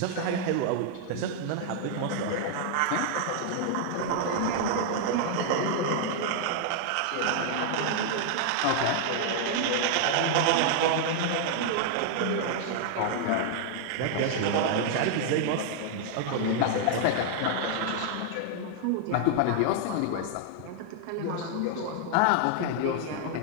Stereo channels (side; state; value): both; different; correlation 0.00